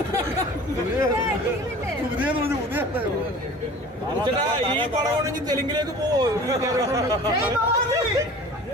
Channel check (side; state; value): both; normal; correlation 0.43